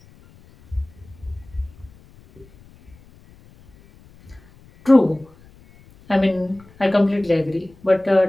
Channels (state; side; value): noise; left; rumble, 26 dB below the sound